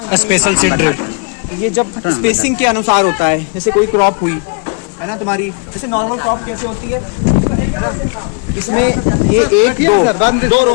स्पेशल सीड ड्रिल। ये जब स्पेसिंग के अनुसार होता है, जैसे कोई क्रॉप हुई है ना तुम्हारी, जैसे नॉर्मल क्रॉप कैसे होती है, इसमें ये एक दो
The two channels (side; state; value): right; quieter; 32.6 dB